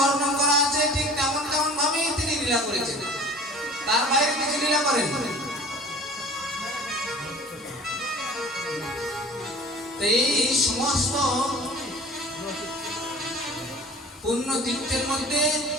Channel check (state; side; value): normal; both; correlation 0.44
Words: করা আছে, ঠিক তেমন তেমন ভাবেই তিনি লীলা করেছেন, তার বাইরে কিছু লীলা করেন। এই সমস্ত পূর্ণ তীর্থের মধ্যে